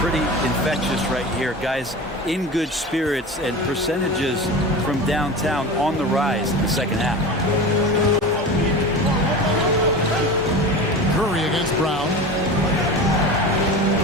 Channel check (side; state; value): both; normal; correlation 0.31